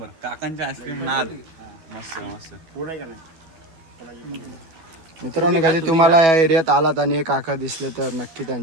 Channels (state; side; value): late; left; 12 ms